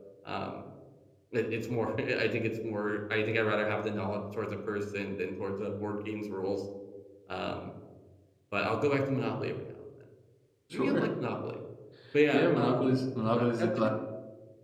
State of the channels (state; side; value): identical; both; correlation 1.00